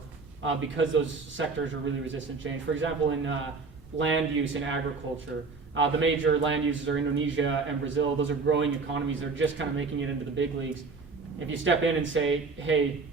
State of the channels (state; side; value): quieter; left; 4.4 dB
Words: because those sectors are really resistant to change. For example, in land use in agriculture, the major land uses are Indonesia and Brazil. Those are growing economies. They're just kind of making it into the big leagues. If you step in and say, hey,